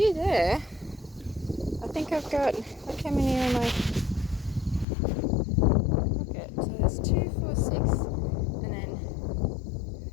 there. I think I've got, look how many are my. So there's 2, 4, 6, and then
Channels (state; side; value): drops out; right; at 4.9 s